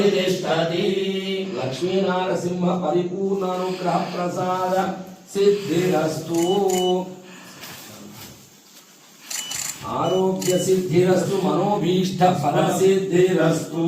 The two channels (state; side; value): identical; both; correlation 1.00